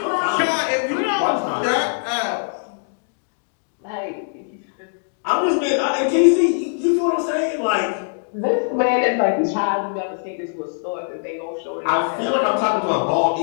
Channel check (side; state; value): right; silent; digital silence